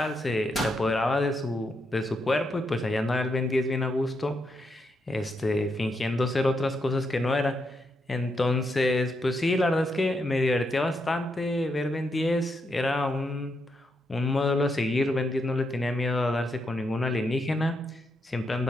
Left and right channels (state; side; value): normal; both; correlation 0.81